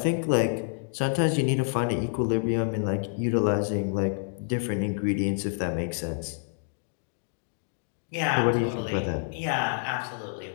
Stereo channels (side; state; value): right; silent; digital silence